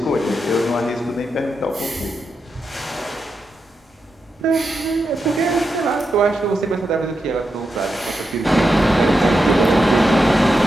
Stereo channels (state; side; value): normal; both; correlation 0.87